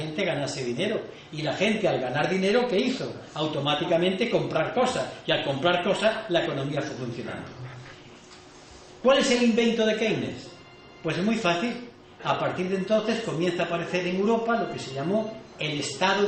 ganase dinero. Y la gente, al ganar dinero, ¿qué hizo? Automáticamente comprar cosas. Y al comprar cosas, la economía fue funcionando. ¿Cuál es el invento de Keynes? Pues es muy fácil. A partir de entonces comienza a aparecer en Europa lo que se llamó el estado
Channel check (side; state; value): both; identical; correlation 1.00